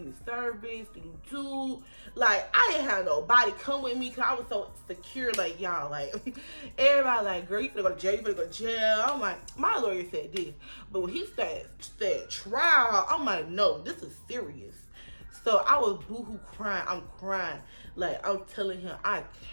service, do. Like, I didn't have nobody come with me because I was so secure. Like, y'all, like, everybody like, girl, you finna go to jail, you finna go to jail. I'm like, my lawyer said this. But when he said trial, I'm like, no, this is serious. So I was boohoo crying. I'm crying. Like, I'm telling him, I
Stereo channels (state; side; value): inverted; both; correlation -1.00